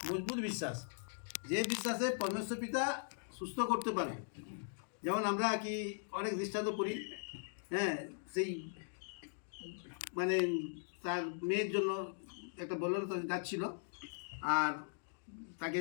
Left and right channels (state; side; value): silent; right; digital silence